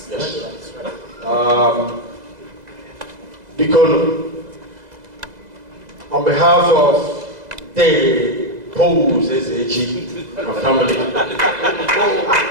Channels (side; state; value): left; late; 2.0 ms